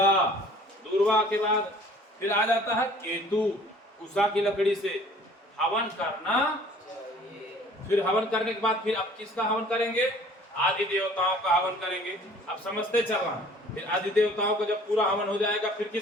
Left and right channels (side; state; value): both; normal; correlation 0.52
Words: दूर्वा के बाद फिर आ जाता है केतु, उषा की लकड़ी से हवन करना। फिर हवन करने के बाद फिर अब किसका हवन करेंगे? आदि देवताओं का हवन करेंगे। अब समझते चलना। फिर आदि देवताओं का जब पूरा हवन हो जाएगा फिर